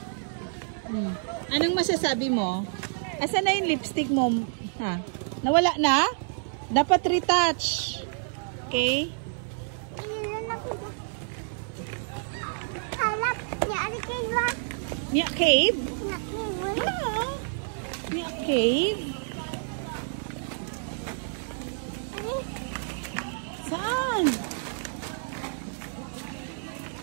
Anong masasabi mo? Asan na yung lipstick mo? Ha? Nawala na? Dapat retouch. Okay? Nya cave? Nya cave? Saan?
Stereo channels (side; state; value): left; silent; 58 dB below the other